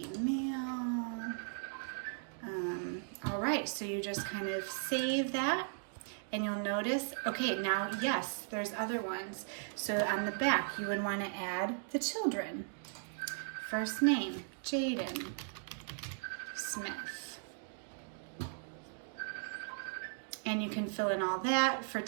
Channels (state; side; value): silent; left; digital silence